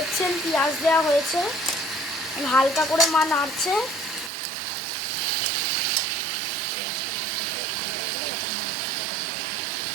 পেঁয়াজ দেওয়া হয়েছে, হালকা করে মা নাড়ছে।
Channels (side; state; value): left; drops out; at 4.3 s